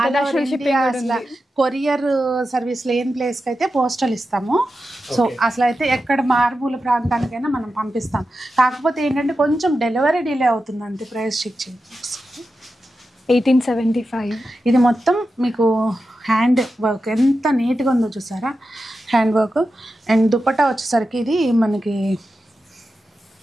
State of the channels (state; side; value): normal; both; correlation 0.91